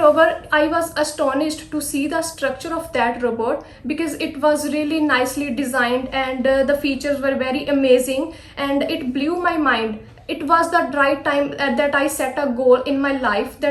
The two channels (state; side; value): identical; both; correlation 1.00